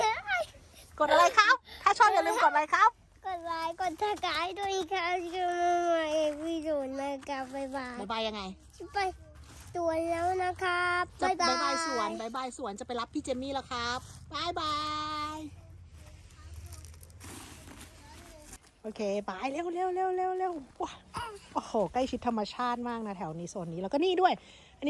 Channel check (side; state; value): both; identical; correlation 1.00